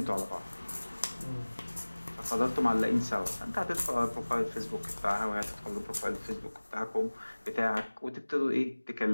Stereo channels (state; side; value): inverted; both; correlation -1.00